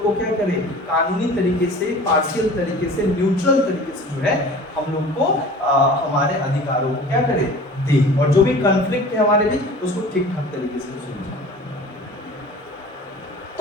को क्या करे, कानूनी तरीके से, पार्शियल तरीके से, न्यूट्रल तरीके से जो है हम लोग को हमारे अधिकारों को क्या करे, दे, और जो भी कॉन्फ्लिक्ट है हमारे बीच उसको ठीक ठाक तरीके से सुलझाए।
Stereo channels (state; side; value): normal; both; correlation 0.41